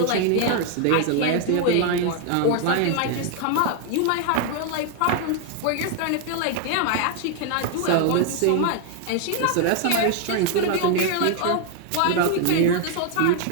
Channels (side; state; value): both; different; correlation 0.00